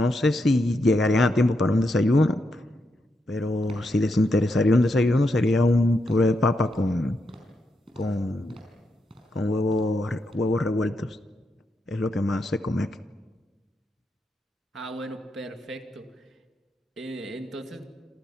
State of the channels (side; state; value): both; normal; correlation 0.83